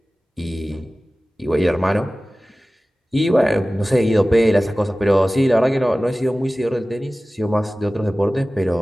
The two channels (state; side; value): normal; both; correlation 0.97